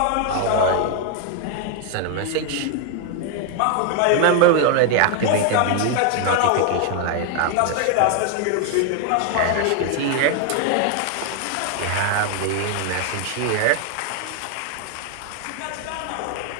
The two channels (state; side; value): different; both; correlation 0.01